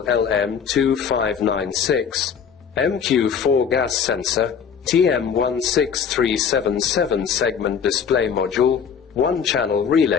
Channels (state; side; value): quieter; right; 7.1 dB